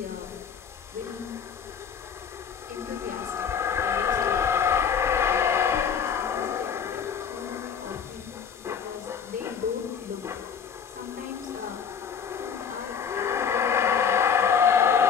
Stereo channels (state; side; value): quieter; right; 7.1 dB